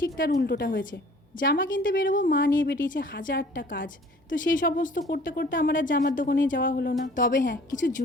তার উল্টোটা হয়েছে। জামা কিনতে বেরোবো, মা নিয়ে বেরিয়েছে হাজারটা কাজ, তো সেই সমস্ত করতে করতে আমার আর জামার দোকানে যাওয়া হলো না। তবে হ্যাঁ, কিছু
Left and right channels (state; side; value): normal; both; correlation 0.52